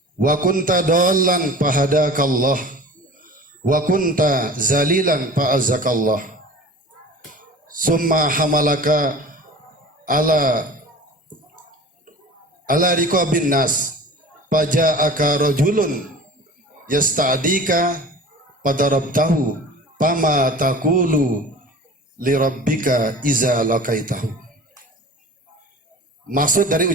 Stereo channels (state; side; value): normal; both; correlation 0.39